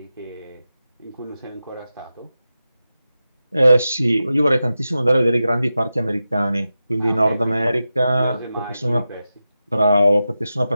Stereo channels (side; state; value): both; inverted; correlation -0.92